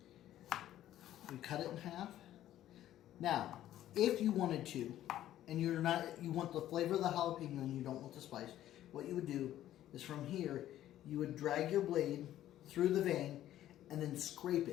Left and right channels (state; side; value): quieter; right; 12.8 dB